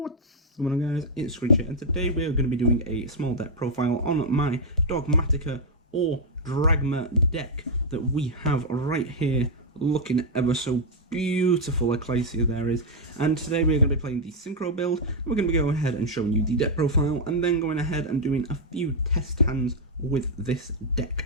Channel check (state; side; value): normal; both; correlation -0.01